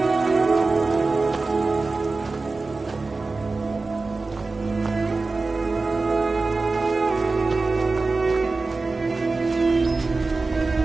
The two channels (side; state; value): left; quieter; 3.7 dB